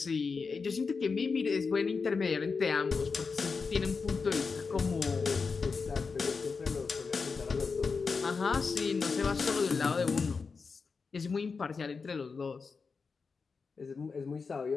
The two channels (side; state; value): right; quieter; 4.9 dB